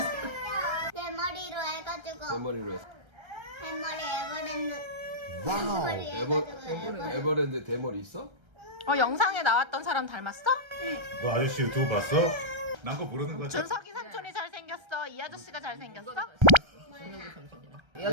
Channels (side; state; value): left; late; 1.3 ms